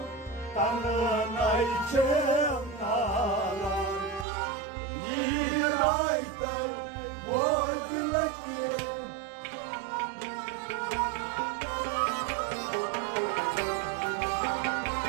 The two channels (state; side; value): drops out; left; at 4.2 s